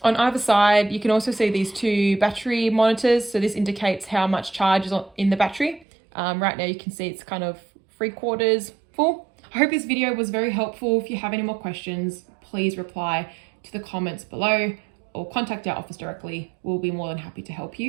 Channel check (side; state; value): left; drops out; at 5.9 s